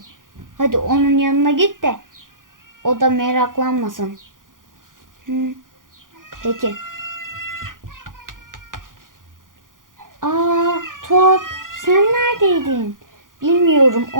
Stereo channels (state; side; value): late; left; 0.89 ms